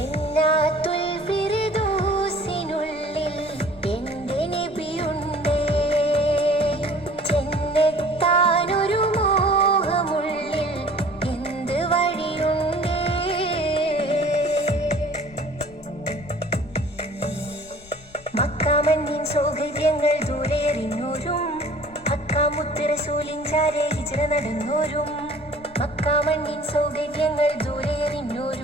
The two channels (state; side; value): noise; left; rumble, 23 dB below the sound